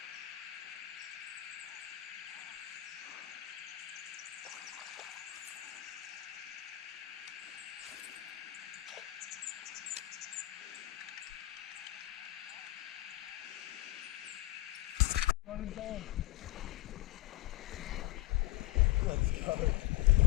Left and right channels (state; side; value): quieter; right; 16.9 dB